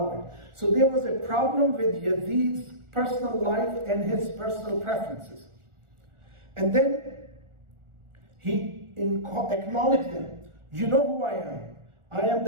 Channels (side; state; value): left; late; 1.4 ms